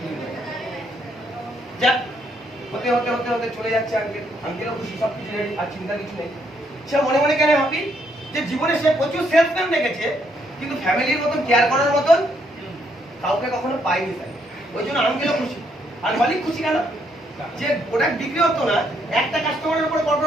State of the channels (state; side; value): normal; both; correlation 0.73